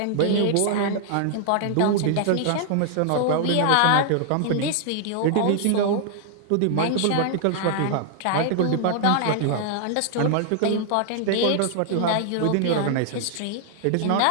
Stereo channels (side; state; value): both; different; correlation -0.01